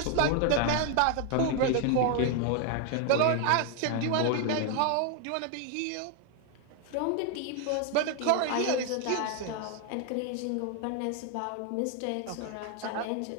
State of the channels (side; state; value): both; different; correlation 0.01